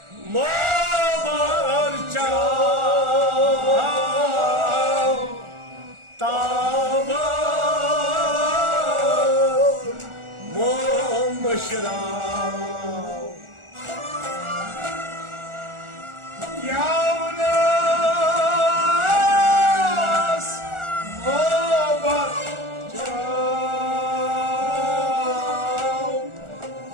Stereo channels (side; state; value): left; late; 1.4 ms